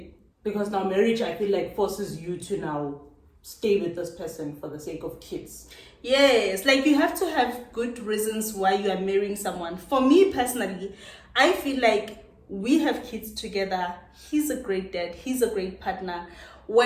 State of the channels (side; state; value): both; identical; correlation 1.00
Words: Because now marriage, I feel like, forces you to now stay with this person for the sake of kids. Yes, like you have to have good reasons why you are marrying someone. For me personally, I feel like we have kids together. He's a great dad. He's a great partner.